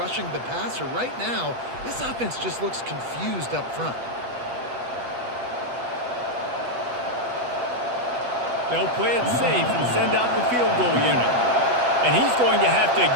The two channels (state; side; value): late; left; 8.1 ms